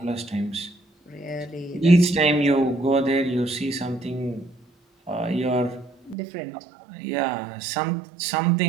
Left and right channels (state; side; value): drops out; left; at 6.2 s